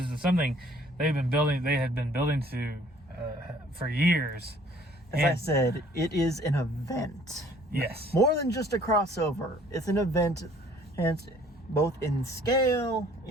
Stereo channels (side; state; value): both; normal; correlation 0.57